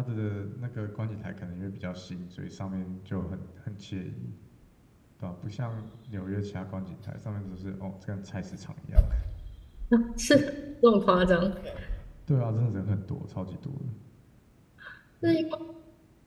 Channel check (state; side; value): identical; both; correlation 1.00